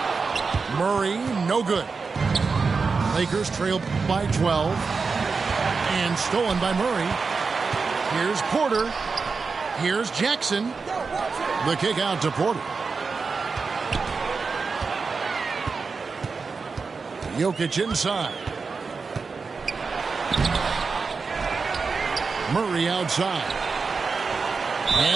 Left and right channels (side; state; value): left; quieter; 4.7 dB